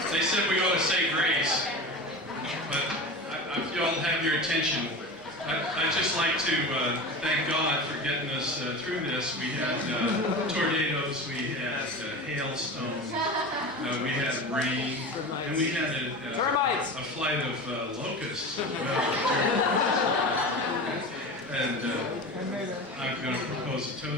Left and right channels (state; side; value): normal; both; correlation 0.29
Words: they said we ought to say grace, but if y'all have your attention, I'd just like to thank God for getting us through this. We had tornadoes, we had hailstones, we had rain, and we had a flight of locusts as well. And I'm going to propose a